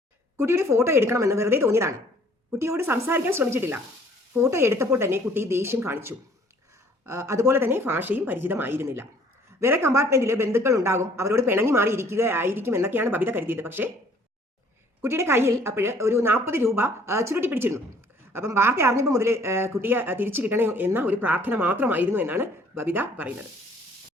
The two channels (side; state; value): both; normal; correlation 0.58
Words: കുട്ടിയുടെ ഫോട്ടോ എടുക്കണമെന്ന് വെറുതെ തോന്നിയതാണ്. കുട്ടിയോട് സംസാരിക്കാൻ ശ്രമിച്ചിട്ടില്ല. ഫോട്ടോ എടുത്തപ്പോൾ തന്നെ കുട്ടി ദേഷ്യം കാണിച്ചു. അതുപോലെ തന്നെ ഭാഷയും പരിചിതമായിരുന്നില്ല. വേറെ കമ്പാർട്ട്മെന്റിൽ ബന്ധുക്കൾ ഉണ്ടാകും, അവരോട് പിണങ്ങി മാറി ഇരിക്കുകയായിരിക്കും എന്നൊക്കെയാണ് ബബിത കരുതിയത്. പക്ഷേ കുട്ടിയുടെ കയ്യിൽ അപ്പോൾ ഒരു 40 രൂപ ചുരുട്ടി പിടിച്ചിരുന്നു. അപ്പം വാർത്ത അറിഞ്ഞപ്പോൾ മുതൽ കുട്ടിയെ തിരിച്ചു കിട്ടണേ എന്ന ഒരു പ്രാർത്ഥന മാത്രമായിരുന്നു എന്നാണ് ബബിത പറയുന്നത്.